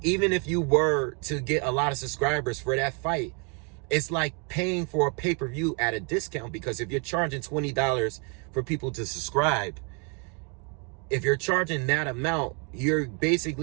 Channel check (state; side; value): quieter; left; 35.5 dB